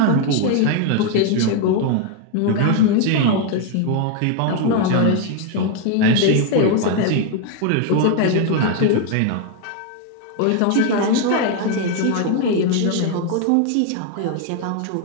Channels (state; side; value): different; both; correlation 0.01